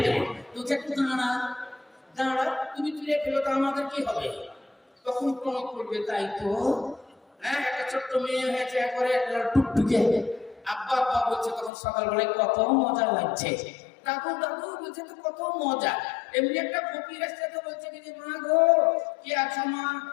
দেবো, তুই একটু দাঁড়া দাঁড়া, তুমি চুরিয়ে ফেলো তো আমাদের কি হবে? তখন প্রণব করবে, তাই তো হ্যাঁ, একটা ছোট্ট মেয়ে হয়েছে একবারে টুকটুকে, আব্বা আব্বা বলছে, তখন সকালবেলায় কত মজা লাগছে, দাদু দাদু বলছে তো কত মজা। এমনি একটা ফকির আসছে তো বলছে কি যে মা গো কি আছো মা,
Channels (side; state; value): right; drops out; at 11.7 s